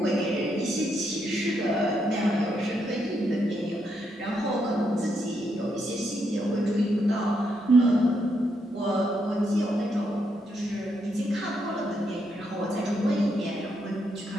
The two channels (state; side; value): normal; both; correlation 0.79